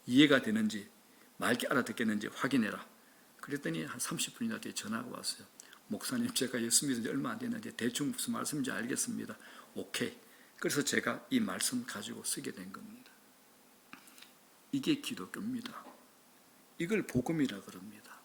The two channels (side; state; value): both; identical; correlation 1.00